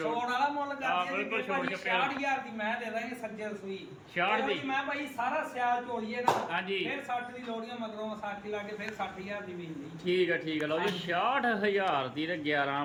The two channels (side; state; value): both; identical; correlation 1.00